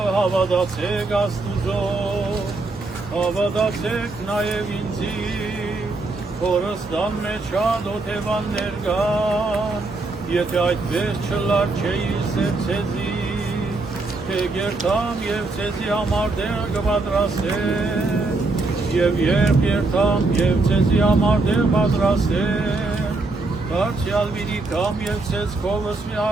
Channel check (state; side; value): quieter; left; 3.3 dB